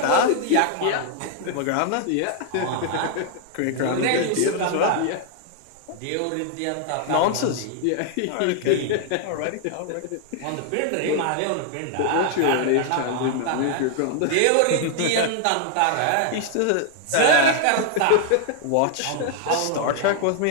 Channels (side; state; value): both; different; correlation 0.00